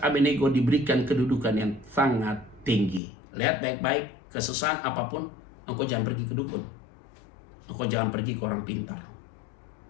Abednego diberikan kedudukan yang sangat tinggi. Lihat baik-baik, kesusahan apapun, engkau jangan pergi ke dukun. Engkau jangan pergi ke orang pintar.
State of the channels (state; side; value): drops out; right; at 3.0 s